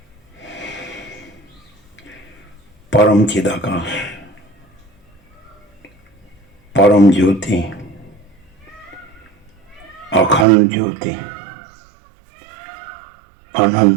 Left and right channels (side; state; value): left; drops out; at 10.5 s